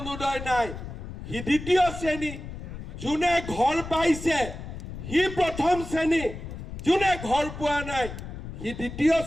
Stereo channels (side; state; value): left; noise; rumble, 10 dB below the sound